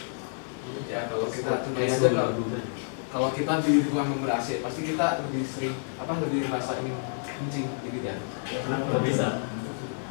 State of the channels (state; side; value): silent; right; digital silence